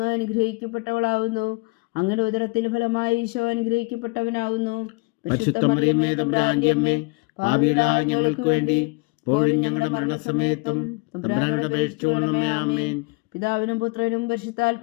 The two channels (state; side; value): quieter; right; 27.0 dB